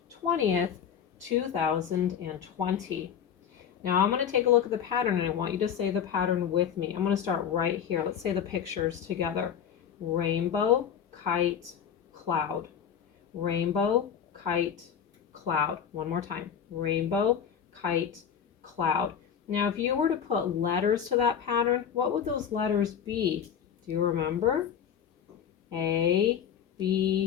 20th, 2020. Now I'm going to take a look at the pattern and I want you to say the pattern with me. I'm going to start right here. Let's say the pictures together. Rainbow, kite, cloud. Rainbow, kite, cloud. One more time. Rainbow, kite, cloud. Now if you were to put letters to that pattern, what would those letters be? Do you remember? A,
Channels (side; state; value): right; quieter; 8.3 dB